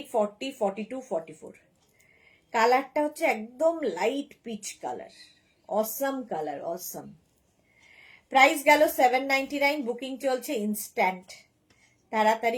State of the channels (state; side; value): identical; both; correlation 1.00